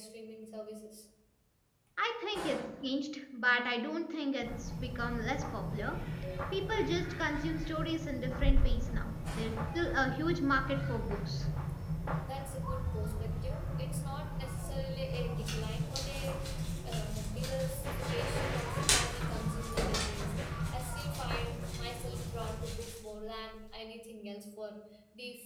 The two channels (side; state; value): both; identical; correlation 1.00